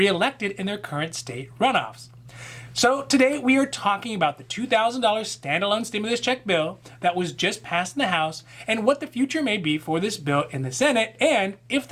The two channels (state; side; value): identical; both; correlation 1.00